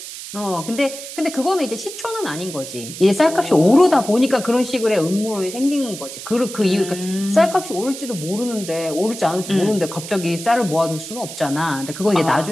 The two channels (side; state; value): right; noise; hiss, 11 dB below the sound